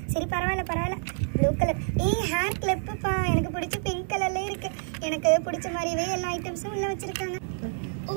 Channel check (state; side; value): silent; left; digital silence